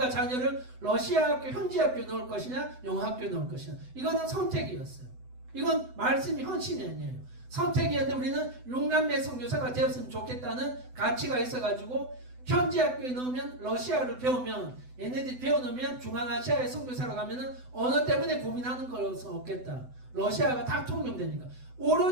자녀를 러시아 학교, 현지 학교 넣을 것이냐 영어 학교 넣을 것이냐 이거는 선택이었어요. 이건 말씀이 헌신이 아니에요. 선택이었는데 우리는 6남매 선교사가 되었으면 좋겠다는 가치가 있어가지고 현지 학교에 넣으면 러시아를 배우면 얘네들이 배워놓으면 중앙아시아의 선교사로 가면은 언어 때문에 고민하는 것은 없겠다. 러시아가 다 통용되니까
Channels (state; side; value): late; left; 7.9 ms